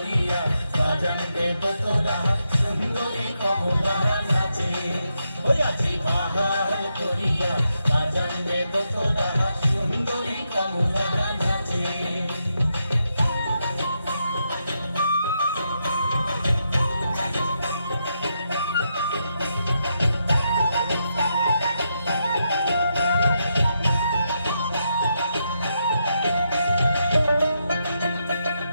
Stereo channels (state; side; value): inverted; both; correlation -0.83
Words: বাজানবে তোরা সুন্দরী কমলা নাচে ওই আজি বাহার করিয়া বাজানবে তোরা সুন্দরী কমলা নাচে